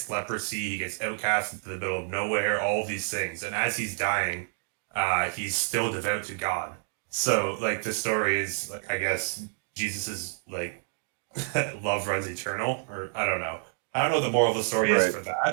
leprosy. He gets outcast into the middle of nowhere. All of these things, and as he's dying, he's still devout to God. So, like, the story is, like, I guess Jesus is like love runs eternal, or I don't know what the moral of the story is Right. for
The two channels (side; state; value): left; silent; 59 dB below the other